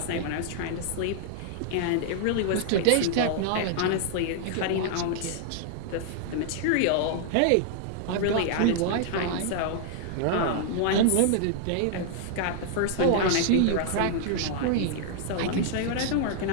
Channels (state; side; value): different; both; correlation -0.01